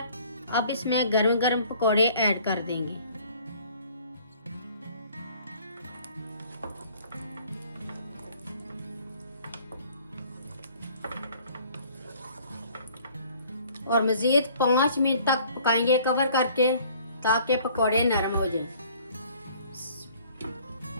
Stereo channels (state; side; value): inverted; both; correlation -0.55